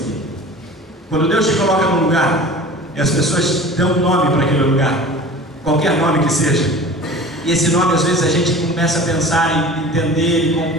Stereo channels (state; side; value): normal; both; correlation 0.40